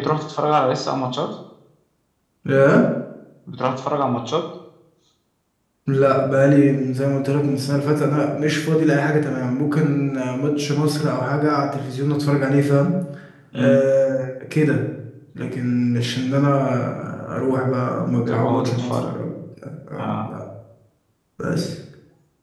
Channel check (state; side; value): identical; both; correlation 1.00